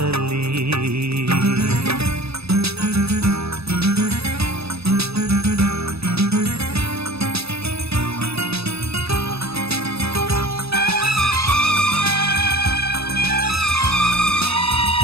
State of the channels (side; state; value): left; late; 0.78 ms